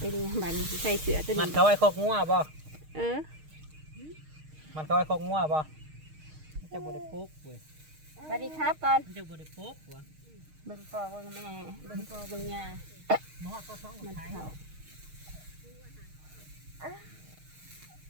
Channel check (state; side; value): late; left; 6.5 ms